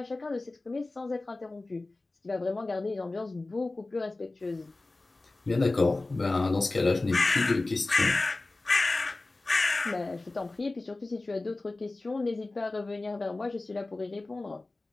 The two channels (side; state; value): right; quieter; 3.1 dB